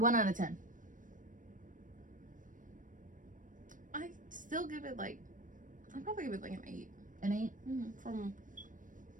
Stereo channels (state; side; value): late; left; 0.38 ms